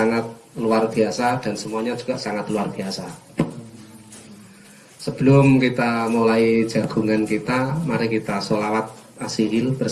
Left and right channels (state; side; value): identical; both; correlation 1.00